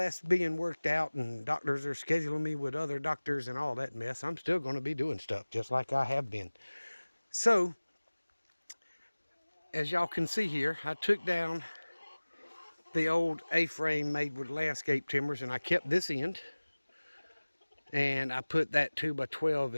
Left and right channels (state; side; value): inverted; both; correlation -1.00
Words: being worked out and doctors are scheduling me with other doctors and all that mess, I'm still going to be doing stuff just like I have been. So, as y'all can see here, I took down the old A-frame made with landscape timbers and I kept this end. And I put that 2x12